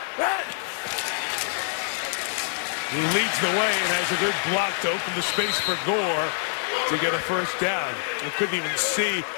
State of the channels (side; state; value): right; silent; 61 dB below the other